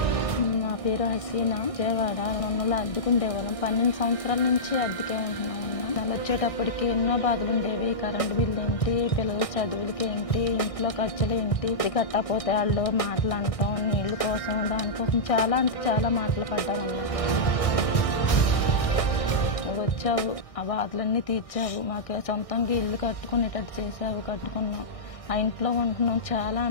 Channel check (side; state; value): right; late; 1.6 ms